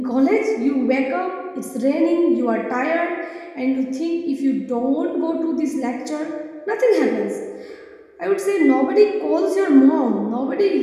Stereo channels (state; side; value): identical; both; correlation 1.00